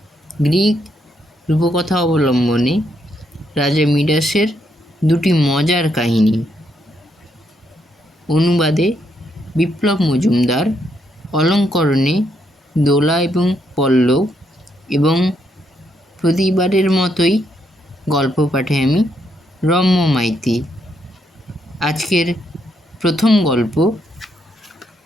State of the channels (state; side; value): normal; both; correlation 0.76